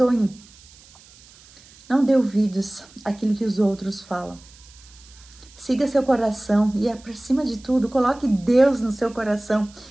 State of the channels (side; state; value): right; noise; hiss, 24 dB below the sound